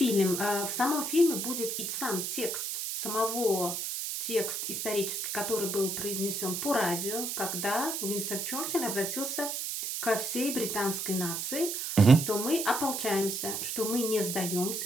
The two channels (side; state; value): right; noise; hiss, 3 dB below the sound